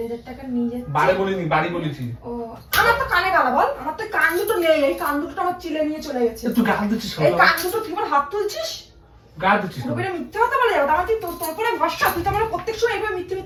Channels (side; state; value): both; identical; correlation 1.00